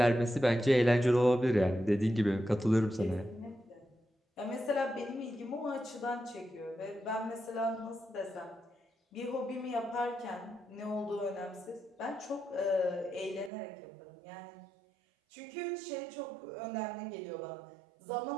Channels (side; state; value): left; drops out; at 13.5 s